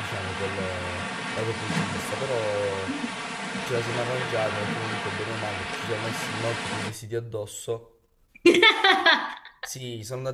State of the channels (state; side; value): identical; both; correlation 1.00